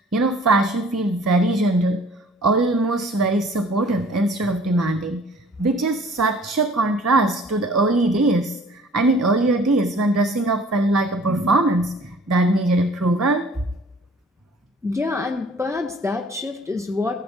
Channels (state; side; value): normal; both; correlation 0.52